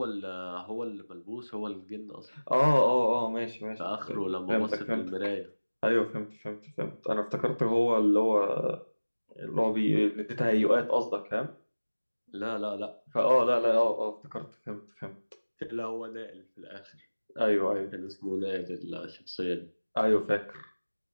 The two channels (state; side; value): inverted; both; correlation -1.00